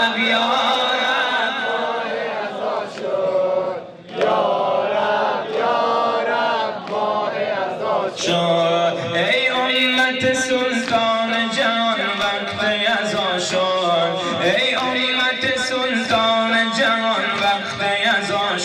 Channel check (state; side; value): identical; both; correlation 1.00